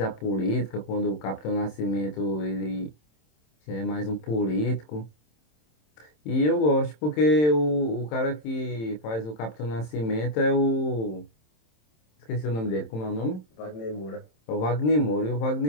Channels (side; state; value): right; late; 27 ms